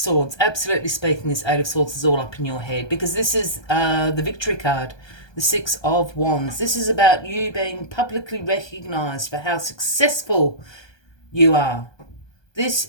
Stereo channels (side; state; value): right; late; 1.2 ms